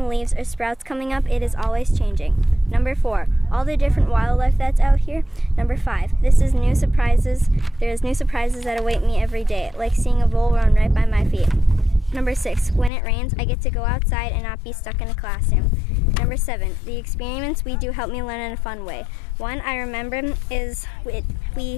leaves, or sprouts coming up, it is always changing. Number 4, all the different wildlife that's out here. Number 5, there is new surprises that await me every day, like seeing a vole run right by my feet. Number 6, when it rains, I get to go outside and not be stuck in a classroom. Number 7, the experiments we do help me learn in a fun way. One I remember is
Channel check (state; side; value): drops out; right; at 12.9 s